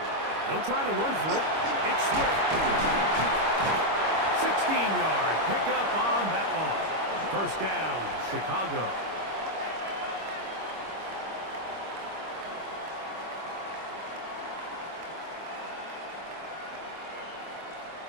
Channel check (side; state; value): left; late; 25 ms